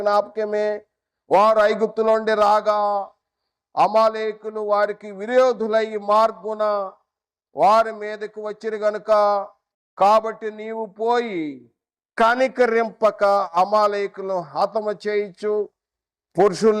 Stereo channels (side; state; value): both; identical; correlation 1.00